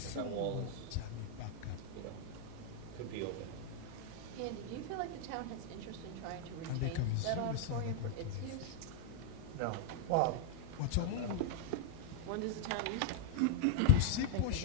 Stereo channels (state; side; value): different; both; correlation -0.01